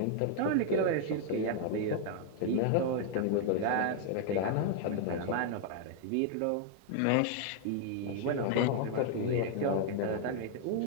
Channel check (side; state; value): both; different; correlation 0.00